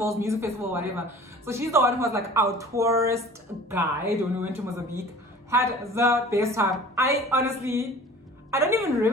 music festival, whatever. So she's the one who was like our tourist guide when we went to Mozambique. Had the best time. I don't even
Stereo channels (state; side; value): normal; both; correlation 0.44